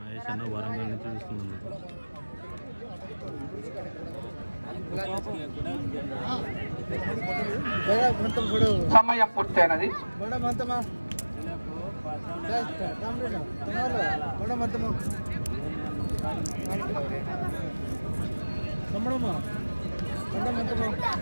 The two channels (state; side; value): inverted; both; correlation -1.00